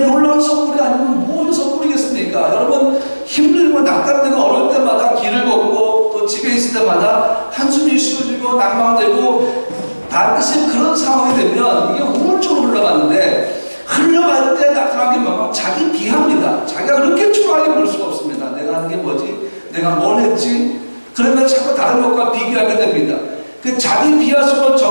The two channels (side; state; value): both; inverted; correlation -1.00